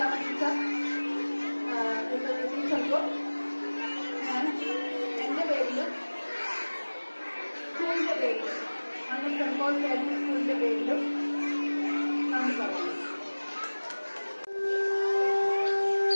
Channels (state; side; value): inverted; both; correlation -1.00